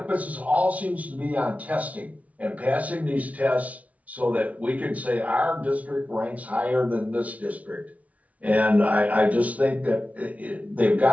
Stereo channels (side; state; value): left; late; 0.068 ms